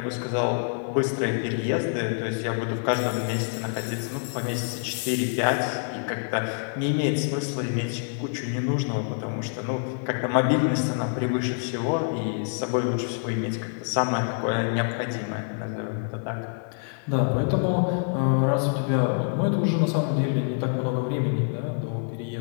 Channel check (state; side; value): silent; right; 61 dB below the other